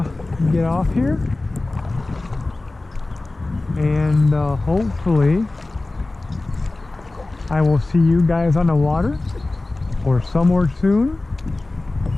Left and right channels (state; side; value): quieter; right; 3.0 dB